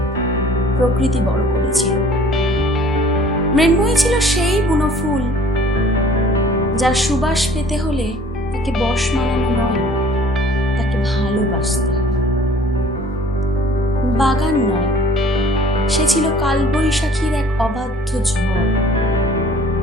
প্রকৃতি বড় করেছিল। মৃন্ময়ী ছিল সেই বুনো ফুল যার সুবাস পেতে হলে তাকে বশ মানানো নয়, তাকে ভালোবাসতে হবে। বাগান নয়, সে ছিল কালবৈশাখীর এক অবাধ্য ঝড়,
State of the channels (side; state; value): both; normal; correlation 0.52